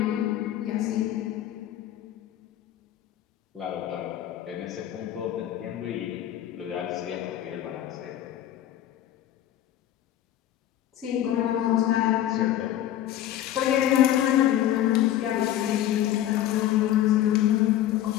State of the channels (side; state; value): right; quieter; 12.3 dB